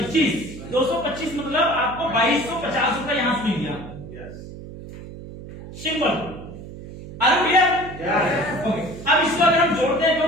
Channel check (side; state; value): right; noise; hum, 13 dB below the sound